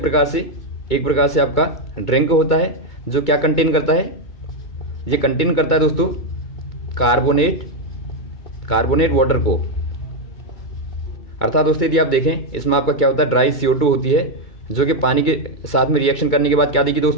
एक प्रकार से आपका ड्रिंक होता है जो क्या कंटेन करता है, ये कंटेन करता है दोस्तों कार्बोनेट वाटर को। अर्थात दोस्तों यदि आप देखें इसमें आपका क्या होता है ड्राई CO2 होती है, जो कि पानी के साथ में रिएक्शन करने के बाद क्या देगी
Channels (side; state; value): right; late; 2.2 ms